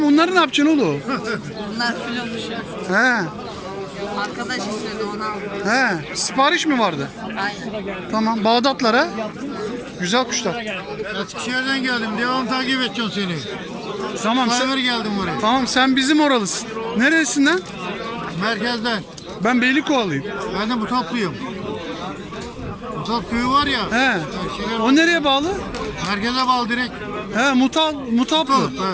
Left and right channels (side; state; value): both; identical; correlation 1.00